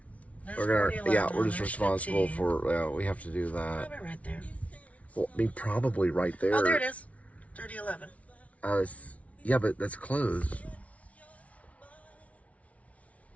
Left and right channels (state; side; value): late; right; 0.066 ms